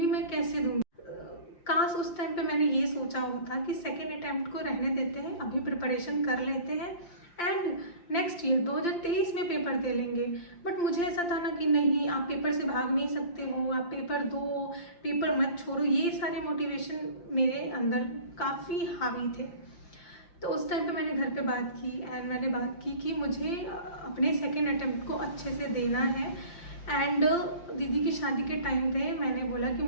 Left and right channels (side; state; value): right; late; 5.8 ms